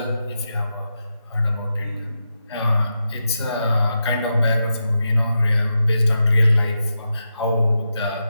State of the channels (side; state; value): both; inverted; correlation -0.88